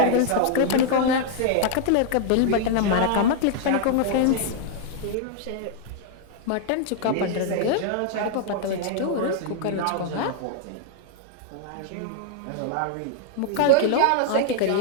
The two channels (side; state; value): both; different; correlation -0.01